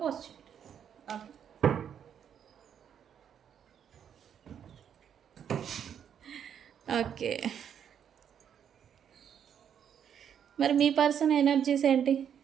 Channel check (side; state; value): left; quieter; 8.6 dB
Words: పోస్ట్ చేయండి. ఓకే, మరి మీ పర్సన్ ఎనర్జీస్ ఏంటి